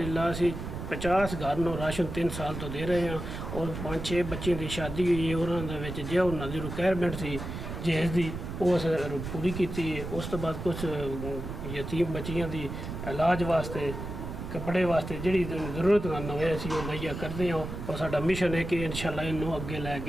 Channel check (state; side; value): noise; right; rumble, 7 dB below the sound